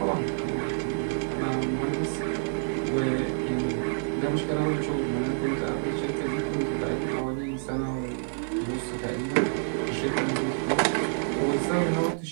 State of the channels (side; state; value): left; silent; digital silence